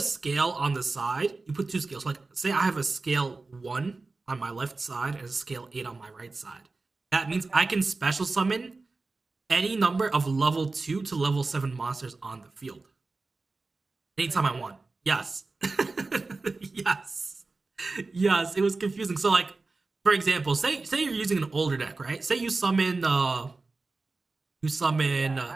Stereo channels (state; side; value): quieter; left; 3.7 dB